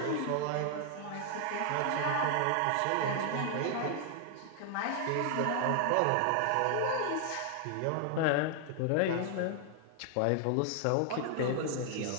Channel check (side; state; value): both; different; correlation 0.00